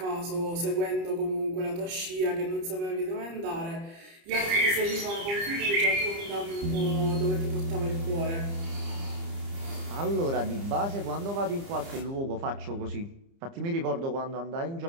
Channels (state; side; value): late; left; 30 ms